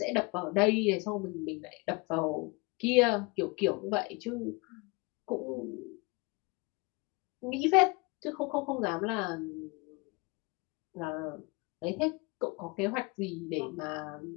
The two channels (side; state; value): right; quieter; 26.8 dB